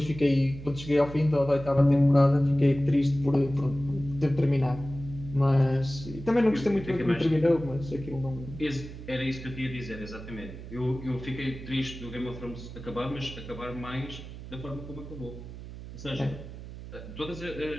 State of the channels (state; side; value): noise; right; hum, 12 dB below the sound